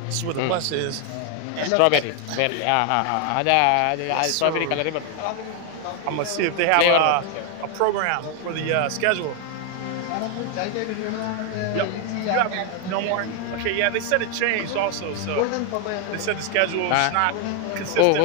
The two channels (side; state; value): both; different; correlation 0.01